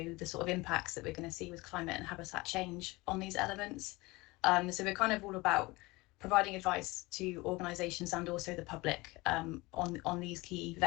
the sort of impacts that we're going to see with climate and habitat change on these elements. So we're kind of all about providing advice to organisations and also the public on these key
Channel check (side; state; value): right; quieter; 22.5 dB